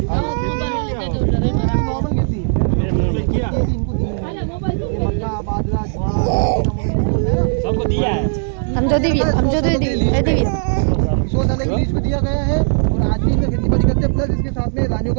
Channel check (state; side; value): silent; left; digital silence